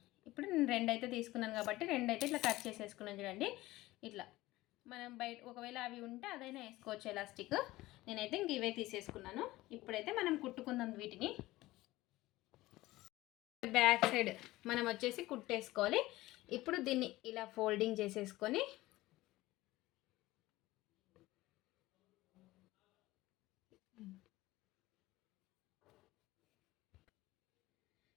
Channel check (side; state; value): right; quieter; 18.0 dB